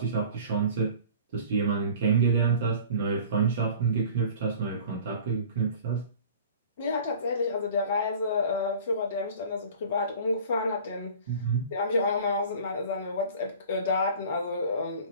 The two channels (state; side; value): inverted; both; correlation -0.44